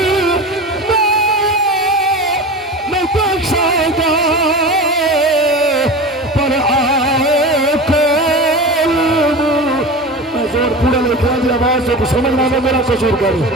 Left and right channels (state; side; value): normal; both; correlation 0.30